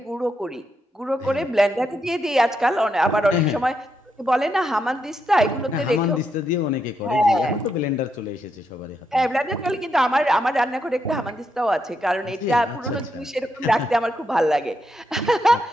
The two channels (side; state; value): both; normal; correlation 0.81